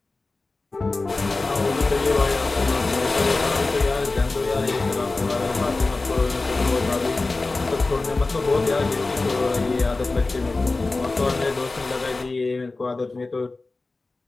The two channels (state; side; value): quieter; right; 3.4 dB